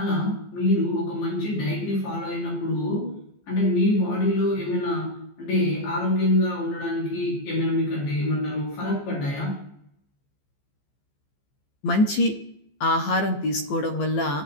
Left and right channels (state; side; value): late; right; 15 ms